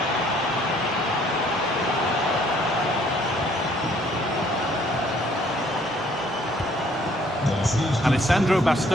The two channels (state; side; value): normal; both; correlation 0.62